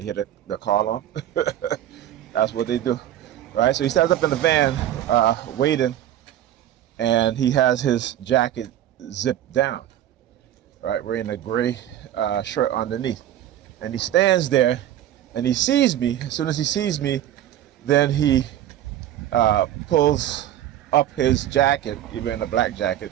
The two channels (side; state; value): left; quieter; 11.9 dB